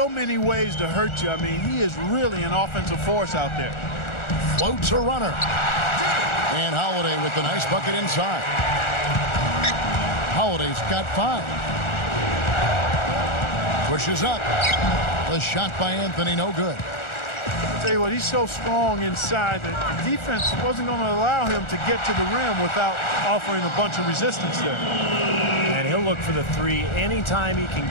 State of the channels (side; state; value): right; late; 1.4 ms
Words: many ways to hurt you. I mean, he is really an offensive force out there. Floats a runner. And Holiday with the nice bucket inside. Holiday's got 5. Pushes up. The shot by Anthony, no good. I tell you what, he's so strong inside that the defense wasn't going to allow him to get to the rim without offering a bunch of resistance there. And he'll look for the three anytime he can